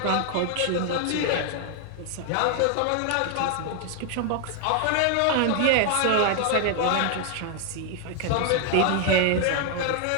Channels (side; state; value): both; different; correlation 0.00